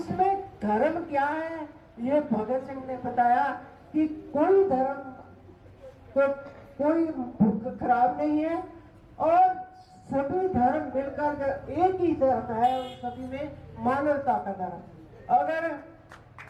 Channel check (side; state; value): both; identical; correlation 1.00